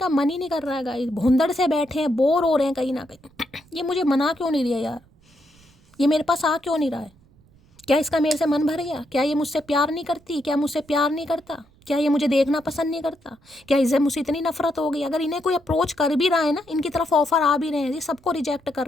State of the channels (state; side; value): noise; right; rumble, 29 dB below the sound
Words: मन ही नहीं कर रहा है गाइस, भुंदड़ से बैठे हैं, बोर हो रहे हैं कहीं ना कहीं। ये मुझे मना क्यों नहीं रहा यार, ये मेरे पास आ क्यों नहीं रहा है। क्या इसका मेरे से मन भर गया? क्या ये मुझसे प्यार नहीं करती? क्या मुझसे प्यार नहीं करता? क्या ये मुझे देखना पसंद नहीं करता? क्या इसे मुझसे इतनी नफरत हो गई? अगर इन्हें कोई अप्रोच कर भी रहा है ना, इनकी तरफ ऑफर आ भी रहे हैं, ये सबको रिजेक्ट कर